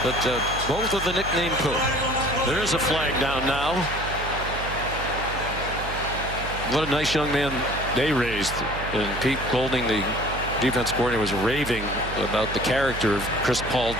but both of the nickname Pooh. There is a flag down now. What a nice young man they raised. And Pete Golding, the defense coordinator, was raving about the character of Chris Paul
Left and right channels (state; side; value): noise; right; hum, 8 dB below the sound